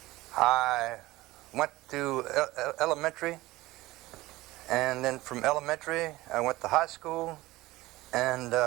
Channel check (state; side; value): quieter; left; 18.7 dB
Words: I went to elementary, and then from elementary I went to high school, and